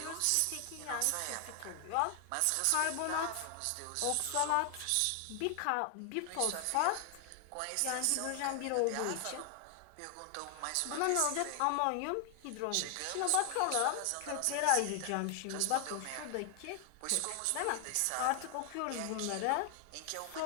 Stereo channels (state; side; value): different; both; correlation 0.00